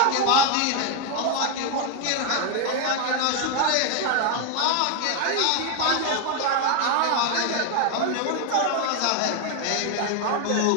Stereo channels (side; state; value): both; different; correlation 0.01